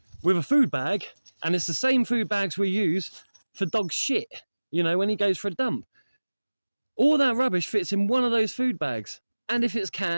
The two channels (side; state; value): both; inverted; correlation -1.00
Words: with a food bag, and it's the same food bags we use for dog shit, when he goes for a dump. All that rubbish fits in one of those food bags. And if it's